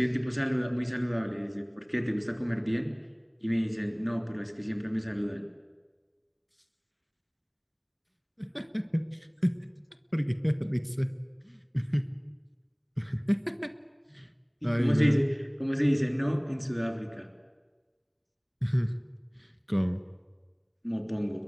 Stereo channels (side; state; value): both; identical; correlation 1.00